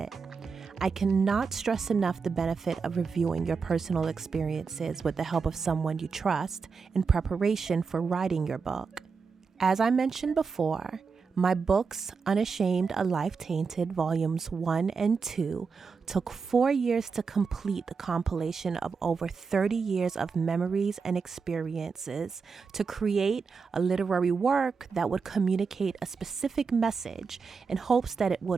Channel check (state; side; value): quieter; left; 5.2 dB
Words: I cannot stress enough the benefit of reviewing your personal experiences with the help of someone you trust in preparation for writing your book. As I mentioned before, my books, Unashamed, A Life Tainted, Volumes 1 and 2, took 4 years to complete the compilation of over 30 years of memories and experiences to create a literary work that would communicate a specific message in hopes that it